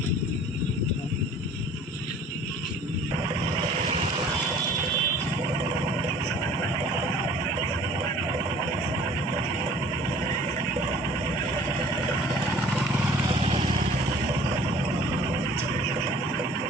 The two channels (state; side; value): normal; both; correlation 0.50